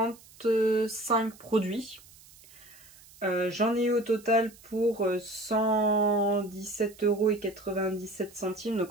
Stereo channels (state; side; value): noise; right; hiss, 23 dB below the sound